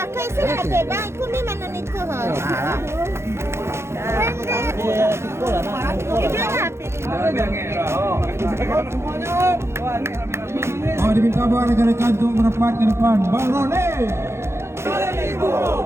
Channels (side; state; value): left; late; 0.13 ms